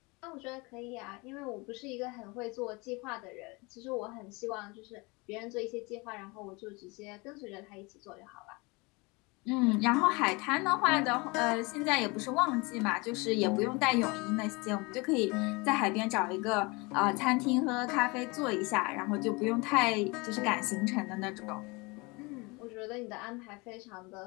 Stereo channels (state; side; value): quieter; right; 26.6 dB